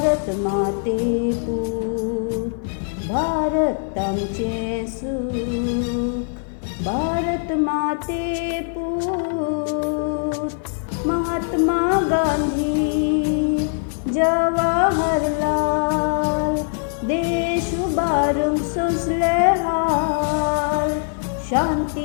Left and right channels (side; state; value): right; silent; 64 dB below the other